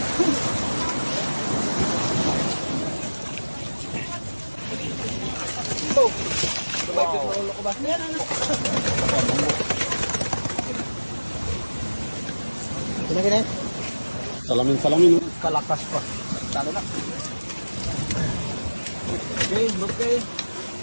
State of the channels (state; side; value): inverted; both; correlation -1.00